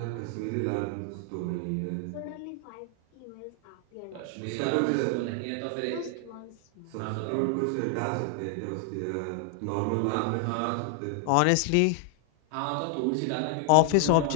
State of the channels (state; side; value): different; both; correlation 0.00